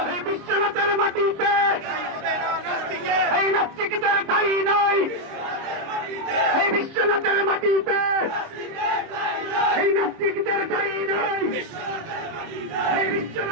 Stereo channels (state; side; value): late; left; 26 ms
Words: বিশ্বনাথের মাটিতে এই নাস্তিকদের ঠাঁই নাই, এই বিশ্বনাথের মাটিতে নাস্তিকদের ঠাঁই নেই এই